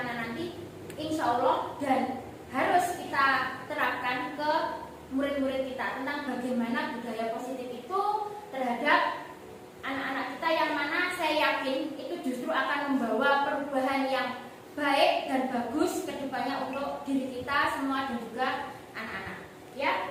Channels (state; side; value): identical; both; correlation 1.00